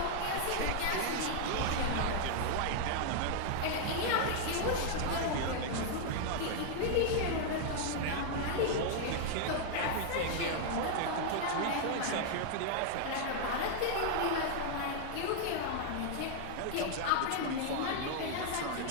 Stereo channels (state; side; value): different; both; correlation 0.00